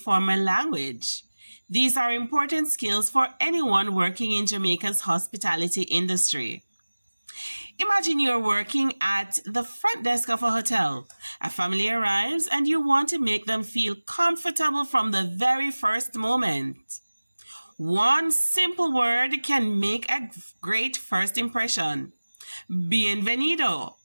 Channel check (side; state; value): both; inverted; correlation -1.00